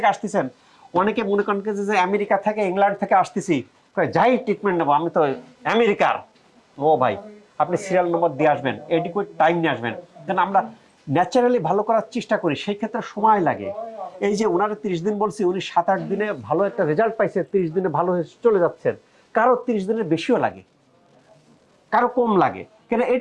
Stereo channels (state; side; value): identical; both; correlation 1.00